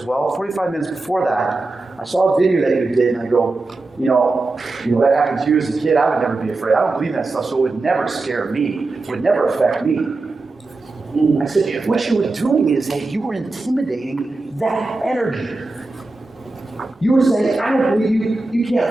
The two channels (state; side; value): quieter; left; 3.3 dB